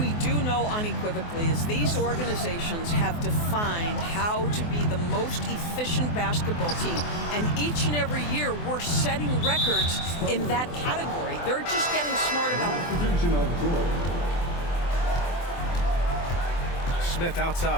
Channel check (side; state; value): right; late; 24 ms